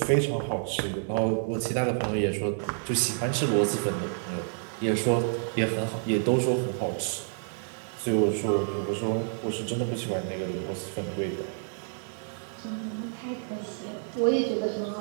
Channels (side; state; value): left; silent; digital silence